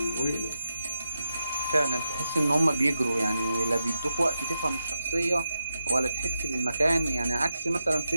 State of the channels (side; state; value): both; inverted; correlation -0.88